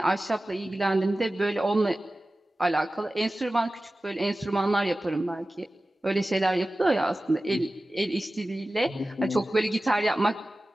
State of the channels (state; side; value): normal; both; correlation 0.96